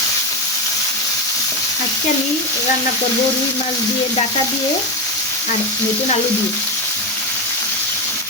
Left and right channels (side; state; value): both; normal; correlation 0.14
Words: আজকে আমি রান্না করবো রুই মাছ দিয়ে, ডাঁটা দিয়ে আর নতুন আলু দিয়ে।